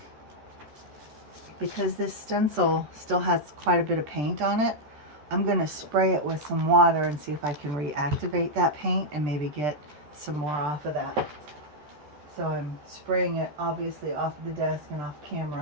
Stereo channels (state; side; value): late; left; 13 ms